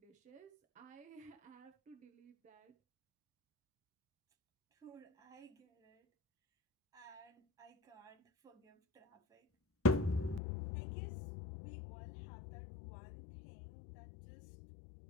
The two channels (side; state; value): right; drops out; at 10.4 s